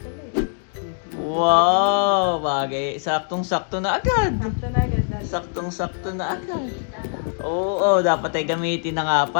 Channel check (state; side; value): silent; right; 64 dB below the other